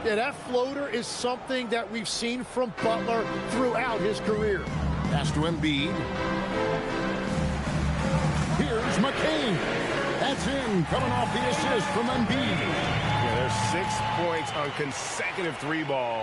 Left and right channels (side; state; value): both; identical; correlation 1.00